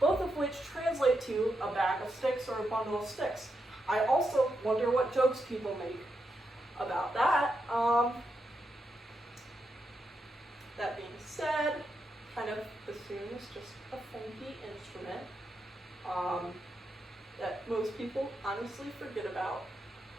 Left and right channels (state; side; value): normal; both; correlation 0.84